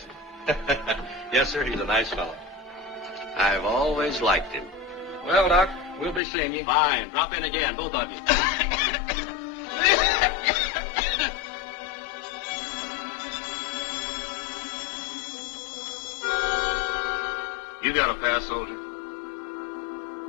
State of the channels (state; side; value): drops out; right; at 6.2 s